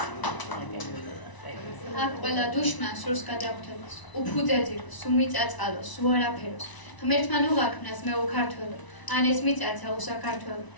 აქ ყველა დუშმა სურს გადახვდებას, უფუძეძილოს, უმიწაწალოს, უარაფეროს. ღმერთმა უღაქმნას მე უქართველო, ან ეს მიწაცა უსაქართველო.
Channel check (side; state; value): right; late; 1.0 ms